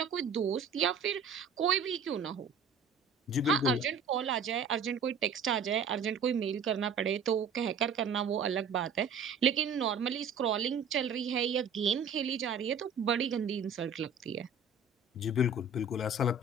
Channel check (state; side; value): quieter; left; 4.8 dB